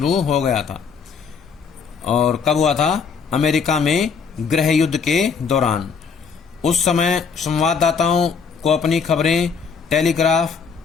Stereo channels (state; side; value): quieter; right; 5.8 dB